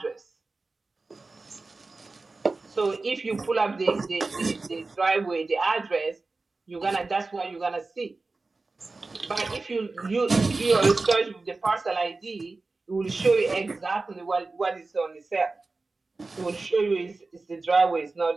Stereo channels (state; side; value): quieter; left; 3.6 dB